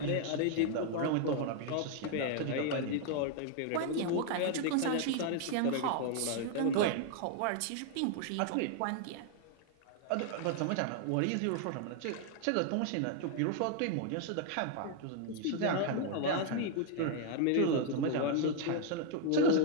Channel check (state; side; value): different; both; correlation 0.00